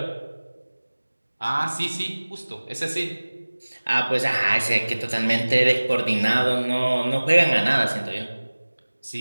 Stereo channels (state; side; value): inverted; both; correlation -1.00